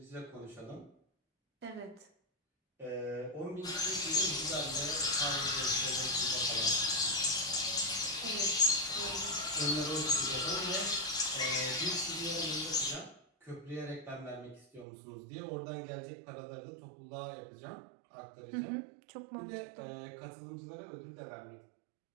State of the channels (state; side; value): drops out; left; at 14.9 s